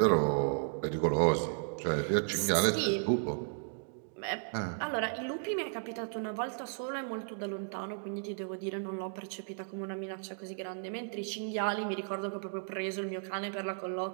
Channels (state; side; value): silent; left; digital silence